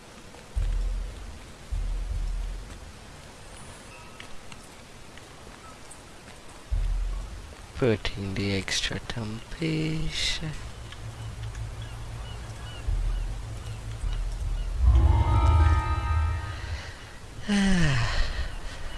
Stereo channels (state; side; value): identical; both; correlation 1.00